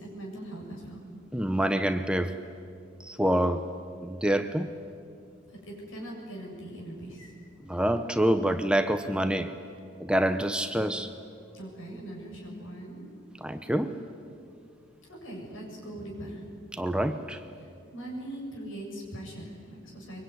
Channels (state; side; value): normal; both; correlation 0.86